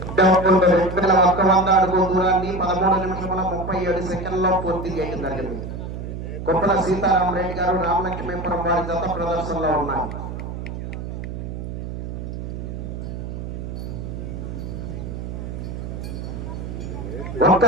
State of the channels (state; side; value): noise; right; hum, 7 dB below the sound